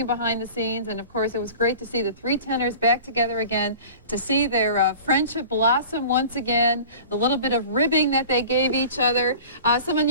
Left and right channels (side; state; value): both; inverted; correlation -0.40